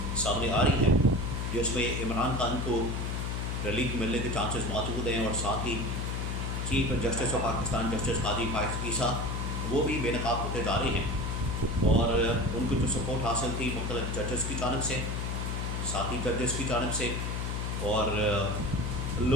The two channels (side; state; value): left; noise; hum, 2 dB below the sound